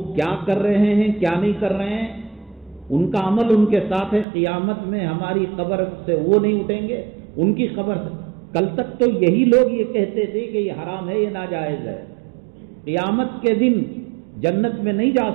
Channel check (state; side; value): drops out; left; at 4.2 s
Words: کیا کر رہے ہیں، کیا نہیں کر رہے ہیں، ان کا عمل ان کے ساتھ ہے۔ قیامت میں ہماری قبر سے وہ نہیں اٹھیں گے، ان کی قبر سے۔ کل تک تو یہی لوگ یہ کہتے تھے کہ یہ حرام ہے، یہ ناجائز ہے۔ قیامت کے دن جنت میں نہیں جا